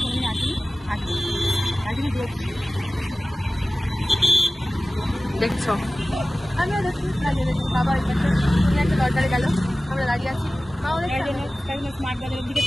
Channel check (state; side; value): normal; both; correlation 0.97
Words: কোনোদিন আসেনি। আসেনি দেখছো, আমিও দেখছি, বাবা তুমি একটা দরকারে গেল, আমরা দাঁড়িয়ে আছি। মা ওদের স্মার্ট বাজারের দিকে